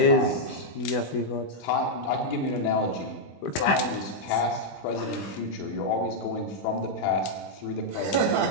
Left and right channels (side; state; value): right; late; 20 ms